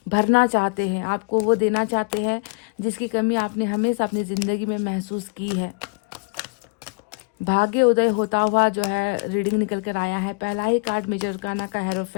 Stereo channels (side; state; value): right; quieter; 32.4 dB